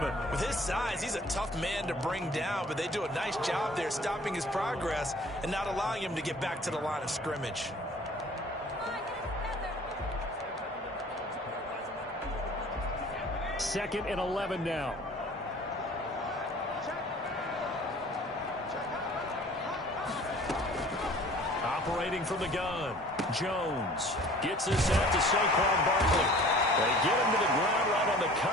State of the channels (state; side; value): normal; both; correlation 0.49